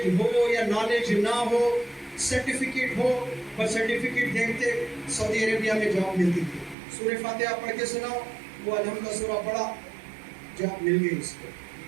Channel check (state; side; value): drops out; left; at 6.8 s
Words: ہو یا نالج نہ ہو، سرٹیفکیٹ ہو، پر سرٹیفکیٹ دیکھتے سعودی عربیہ میں جاب ملتی تھی۔ سورہ فاتحہ پڑھ کے سناؤ، وہ الحمد سورہ پڑھا، جاب مل گئی اس کو۔